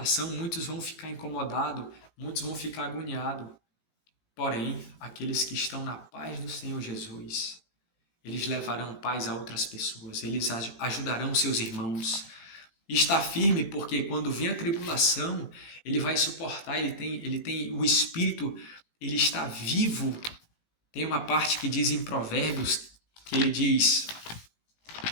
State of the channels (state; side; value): late; right; 18 ms